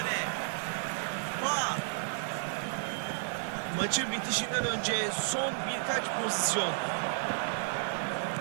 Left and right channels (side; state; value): left; silent; 56 dB below the other